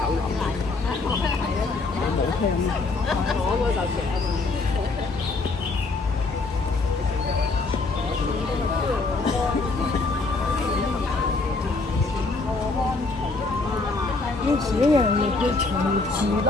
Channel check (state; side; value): quieter; right; 3.7 dB